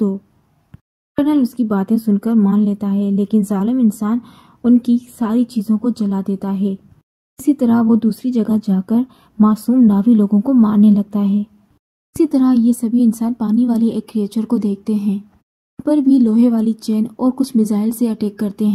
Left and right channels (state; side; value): identical; both; correlation 1.00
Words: कर्नल उसकी बातें सुनकर मान लेता है, लेकिन जालिम इंसान उनकी सारी चीज़ों को जला देता है। इसी तरह वो दूसरी जगह जाकर मासूम नावी लोगों को मारने लगता है। इसी तरह ये सभी इंसान पानी वाले एक क्रिएचर को देखते हैं, पर भी लोहे वाली चेन और कुछ मिसाइल से अटैक करते